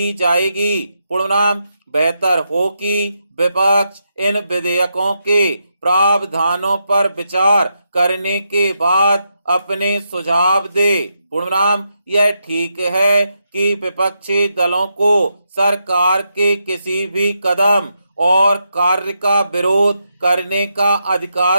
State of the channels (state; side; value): inverted; both; correlation -0.83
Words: जाएगी। पूर्णविराम बेहतर हो कि विपक्ष इन विधेयकों के प्रावधानों पर विचार करने के बाद अपने सुझाव दे। पूर्णविराम यह ठीक है कि विपक्षी दलों को सरकार के किसी भी कदम और कार्य का विरोध करने का